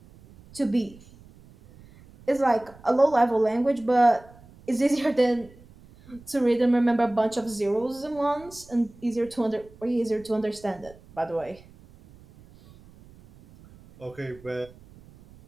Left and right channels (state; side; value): noise; right; rumble, 24 dB below the sound